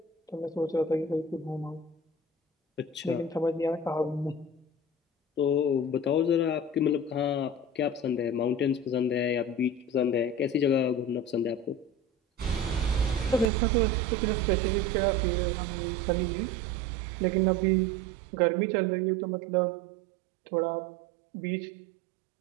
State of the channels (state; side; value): drops out; left; at 13.5 s